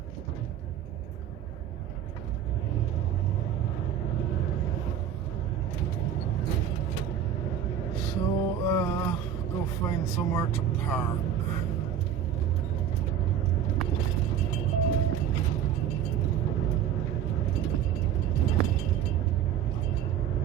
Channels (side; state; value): left; quieter; 9.3 dB